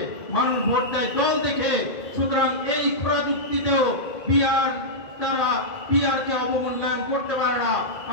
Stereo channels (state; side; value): late; right; 2.2 ms